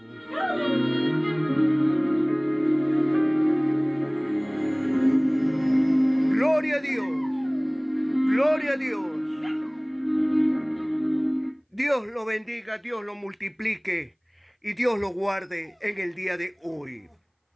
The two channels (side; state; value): both; identical; correlation 1.00